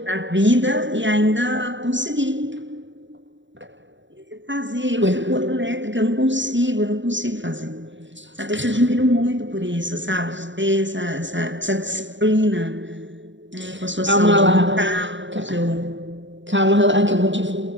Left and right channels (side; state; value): left; late; 0.54 ms